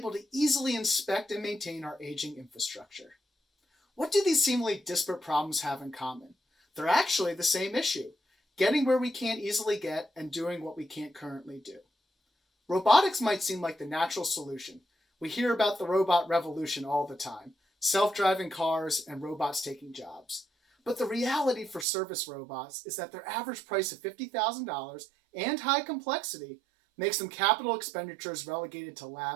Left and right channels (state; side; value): drops out; left; at 21.9 s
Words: to easily inspect and maintain our aging infrastructure. What do these seemingly disparate problems have in common? They're actually the same issue: getting where we can't easily get and doing what we can't currently do. Robotics might seem like the natural solution. We hear about the robot revolution all the time: self-driving cars and robots taking jobs. But the reality for service robots is that their average price of $50,000 and high complexity makes them capital expenditures relegated to